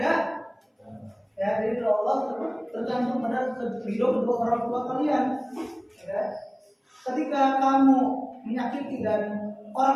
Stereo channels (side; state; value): both; identical; correlation 1.00